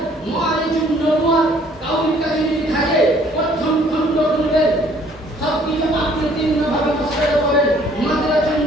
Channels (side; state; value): both; normal; correlation 0.59